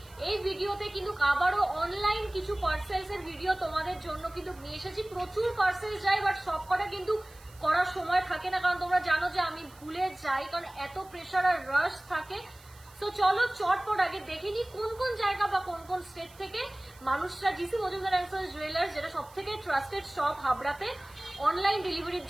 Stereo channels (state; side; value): noise; right; hiss, 24 dB below the sound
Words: এই ভিডিওতে কিন্তু আবারও অনলাইন কিছু পার্সেলস এর ভিডিও তোমাদের জন্য কিন্তু নিয়ে এসেছি। প্রচুর পার্সেল যায়, বাট সবকটা কিন্তু করার সময় থাকে না, কারণ তোমরা জানো যে আমি ভুলে যাই, কারণ এত প্রেশার আর রাশ থাকে। তো চলো চটপট আগে দেখে নি কোন কোন জায়গা বা কোন কোন স্টেট থেকে মানুষরা GC Majumdar and sons jewellers, যেটা সব থেকে ট্রাস্টেড শপ হাবড়াতে, অনলাইন ডেলিভারির